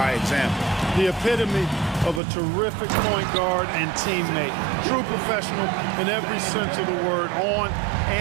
example. The epitome of a terrific point guard and teammate. True professional in every sense of the word, on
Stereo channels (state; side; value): drops out; left; at 2.2 s